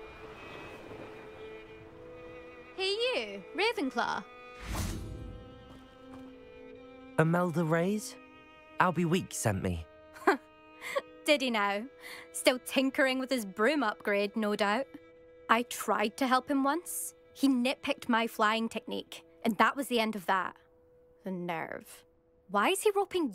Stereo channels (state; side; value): identical; both; correlation 1.00